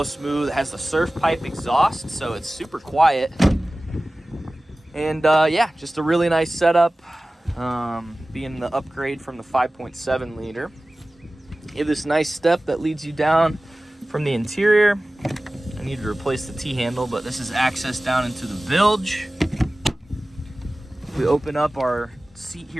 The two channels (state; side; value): normal; both; correlation 0.97